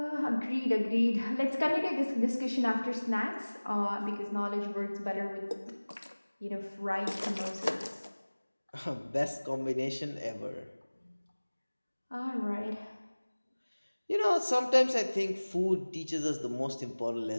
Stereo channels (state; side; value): inverted; both; correlation -1.00